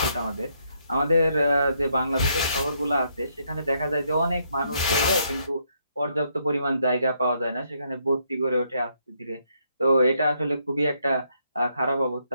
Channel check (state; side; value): inverted; both; correlation -0.74